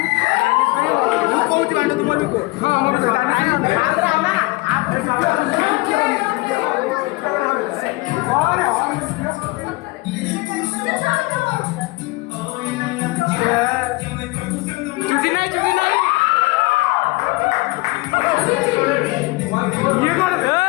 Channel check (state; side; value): quieter; right; 22.9 dB